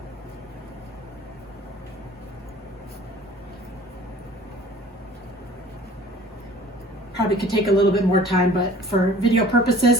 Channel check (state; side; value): normal; both; correlation 0.49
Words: Probably could take a little bit more time, but for video purposes,